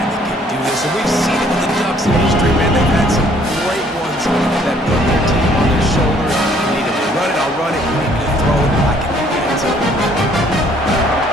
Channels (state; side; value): normal; both; correlation 0.62